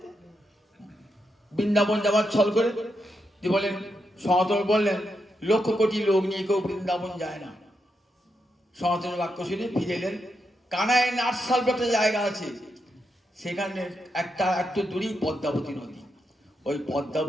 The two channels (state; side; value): normal; both; correlation 0.84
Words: বৃন্দাবন যাবার ছল করে যে বলেন, সনাতন বললেন 1,00,000 কোটি লোক নিয়ে কেউ বৃন্দাবন যায় না। সনাতনের বাক্য শুনে ফিরে এলেন। কানায় নাটশাল একটা জায়গা আছে, সেখানে একটু দূরেই পদ্মাবতী নদী। ওই